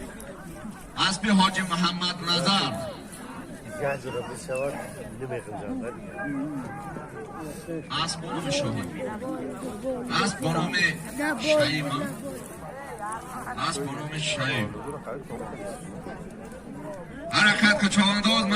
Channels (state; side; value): identical; both; correlation 1.00